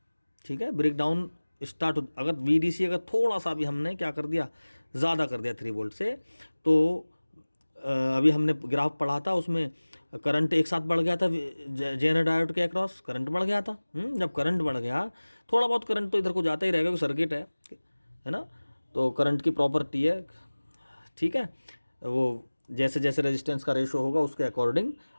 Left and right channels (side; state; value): both; inverted; correlation -1.00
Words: ठीक है, ब्रेक डाउन स्टार्ट हो, अगर VDC अगर थोड़ा सा भी हमने क्या कर दिया, ज़्यादा कर दिया 3 वोल्ट से, तो अभी हमने ग्राफ पढ़ा था उसमें करंट एक साथ बढ़ गया था, जेनर डायोड के अक्रॉस करंट बढ़ गया था। जब करंट बढ़ गया, थोड़ा बहुत करंट तो इधर को जाता ही रहेगा क्योंकि सर्किट है ना, तो करंट की प्रॉपर्टी है। ठीक है, वो जैसे जैसे रेजिस्टेंस का रेशो होगा उसके अकॉर्डिंग